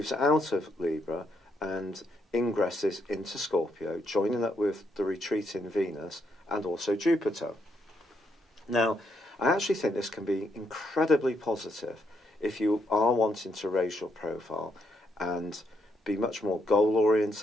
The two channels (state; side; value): normal; both; correlation 0.76